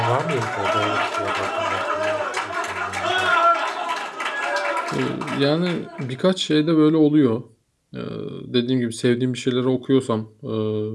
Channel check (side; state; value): both; identical; correlation 1.00